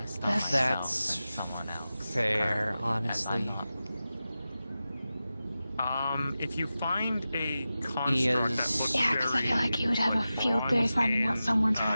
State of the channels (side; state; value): both; inverted; correlation -0.94